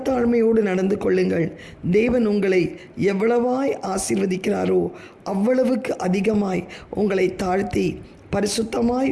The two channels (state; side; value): identical; both; correlation 1.00